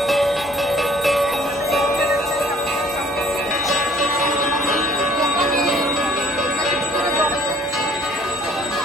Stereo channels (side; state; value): both; normal; correlation 0.56